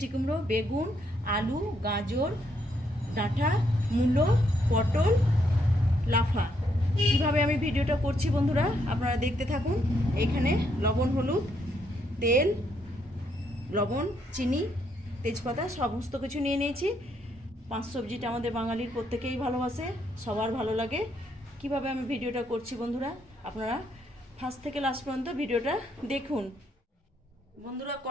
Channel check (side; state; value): both; normal; correlation 0.74